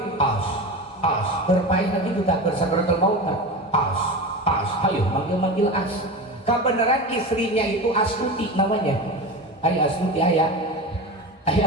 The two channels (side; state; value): both; normal; correlation 0.27